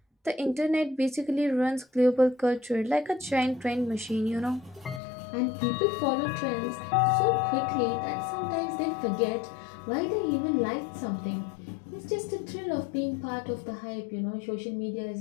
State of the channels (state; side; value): drops out; right; at 5.0 s